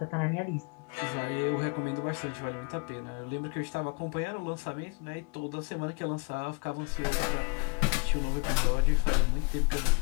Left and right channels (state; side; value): quieter; right; 32.5 dB